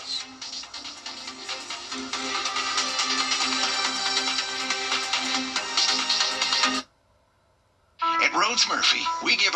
At Rhodes Murphy, we give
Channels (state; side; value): identical; both; correlation 1.00